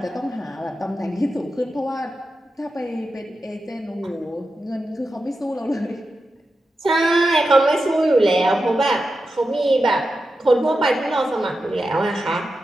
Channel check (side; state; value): both; normal; correlation 0.90